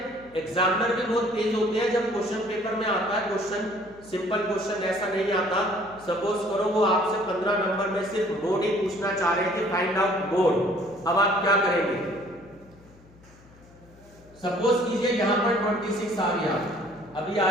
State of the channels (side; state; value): left; noise; hum, 25 dB below the sound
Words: एग्जामिनर भी बहुत तेज होते हैं। जब क्वेश्चन पेपर में आता है क्वेश्चन, सिंपल क्वेश्चन ऐसा नहीं आता। सपोज करो वो आपसे 15 नंबर में सिर्फ मोड ही पूछना चाह रहे थे, फाइंड आउट मोड। अब आप क्या करेंगे? सपोज कीजिए यहां पर 26 आ गया, अभी